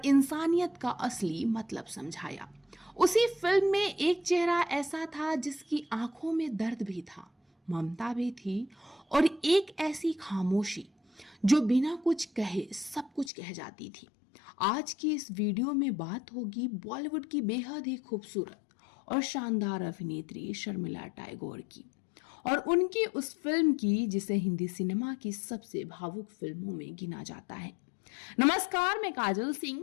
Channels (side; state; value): right; drops out; at 13.3 s